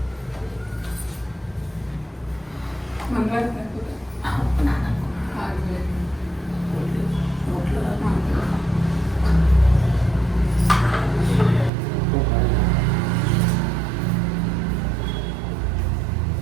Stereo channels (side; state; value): left; drops out; at 11.7 s